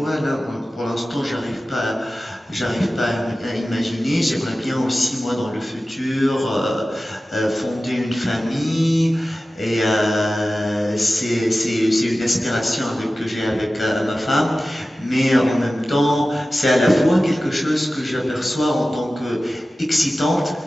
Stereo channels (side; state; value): both; normal; correlation 0.95